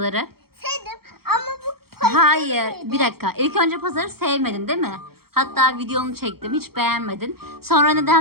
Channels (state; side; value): late; left; 0.94 ms